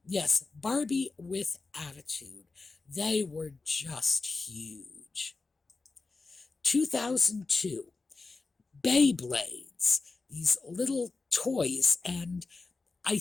Yes, Barbie with attitude. They were just huge. 2002, Beyblades. These little toys, and I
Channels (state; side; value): quieter; right; 3.9 dB